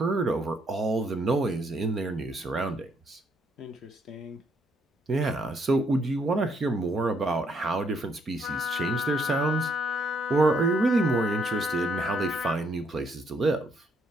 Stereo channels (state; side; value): normal; both; correlation 0.72